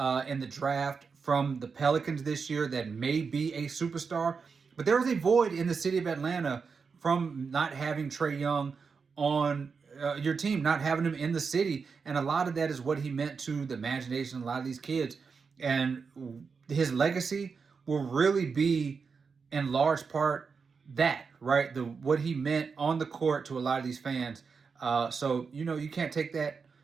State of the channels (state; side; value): quieter; left; 5.3 dB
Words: the draft from the Pelicans this year that may be a superstar. But there is a void in the city of Atlanta from not having Trae Young on your team, not having him in the city. And a lot of that is what he meant to the imagination of a lot of these kids. And his legacy will really be, in large part, that, right? What he meant on the court to a lot of these fans. So you can't take that